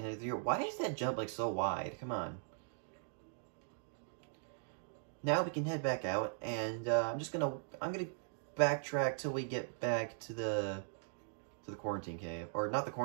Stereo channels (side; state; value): left; silent; digital silence